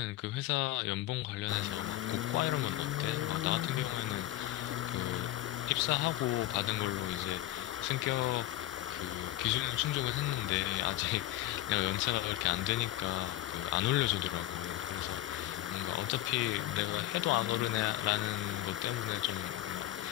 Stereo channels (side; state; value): right; quieter; 15.2 dB